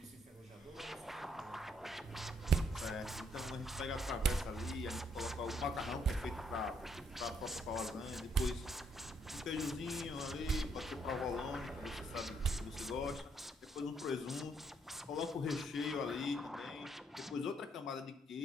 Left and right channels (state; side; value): normal; both; correlation 0.72